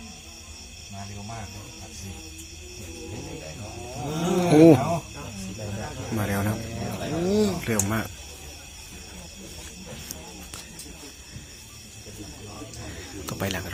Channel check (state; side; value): identical; both; correlation 1.00